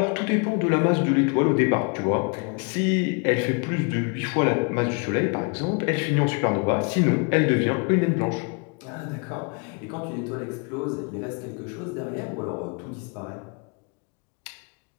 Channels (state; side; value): quieter; right; 35.0 dB